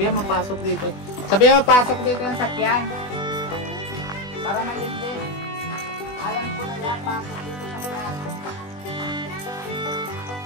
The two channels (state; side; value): late; right; 20 ms